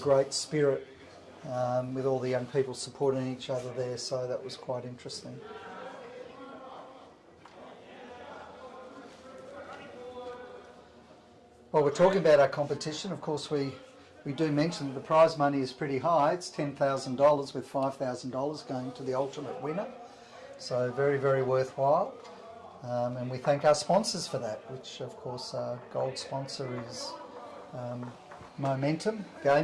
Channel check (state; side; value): identical; both; correlation 1.00